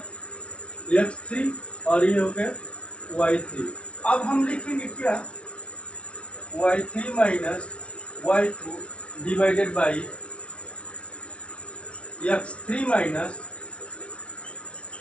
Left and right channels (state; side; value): late; right; 0.061 ms